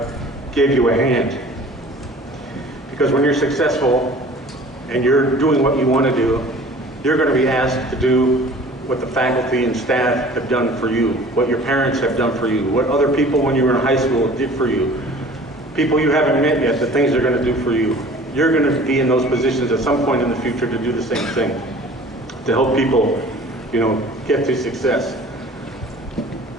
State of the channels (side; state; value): both; normal; correlation 0.46